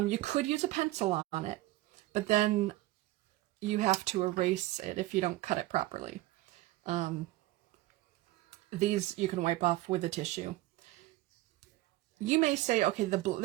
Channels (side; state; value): left; quieter; 18.1 dB